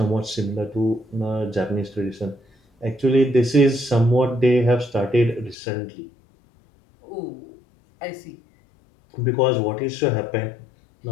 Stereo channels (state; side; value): drops out; right; at 5.6 s